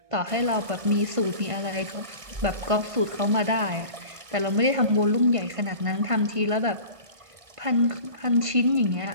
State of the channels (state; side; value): late; left; 1.6 ms